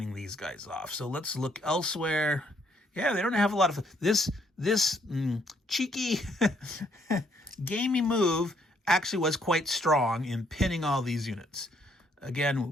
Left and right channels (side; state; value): both; normal; correlation 0.69